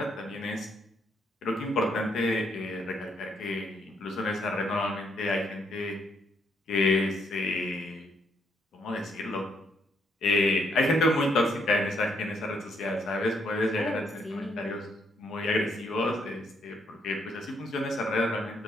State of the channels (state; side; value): normal; both; correlation 0.73